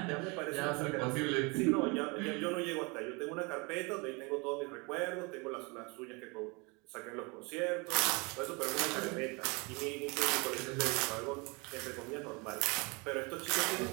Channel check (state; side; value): quieter; left; 29.0 dB